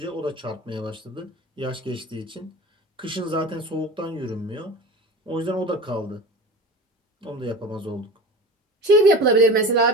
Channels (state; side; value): normal; both; correlation 0.34